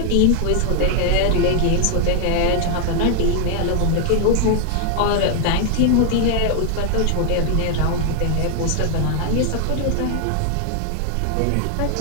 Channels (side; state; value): both; different; correlation 0.00